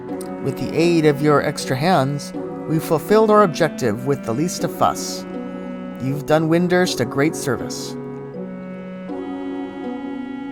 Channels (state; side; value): identical; both; correlation 1.00